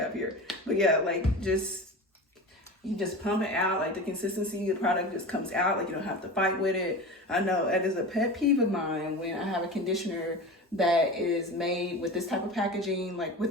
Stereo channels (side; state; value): both; normal; correlation 0.30